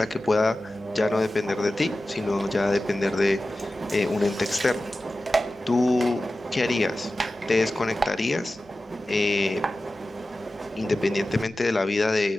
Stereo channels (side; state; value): both; normal; correlation 0.95